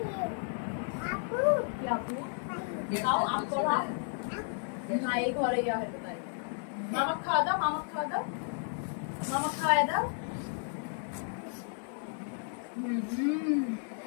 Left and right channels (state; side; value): silent; right; 56 dB below the other